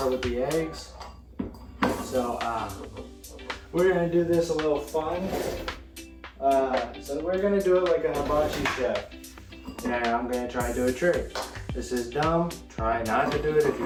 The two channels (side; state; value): both; identical; correlation 1.00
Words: with the eggs. So we're gonna do this a little fun. So we're gonna do it like a hibachi chef. And I'm gonna try to do a trick. This is dumb. Try not to do it if you